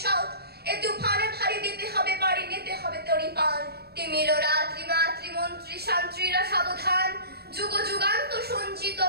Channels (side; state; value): left; late; 0.46 ms